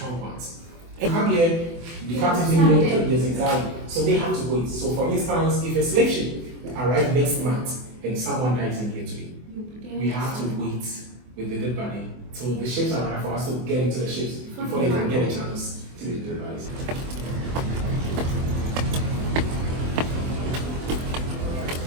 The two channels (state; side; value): late; left; 24 ms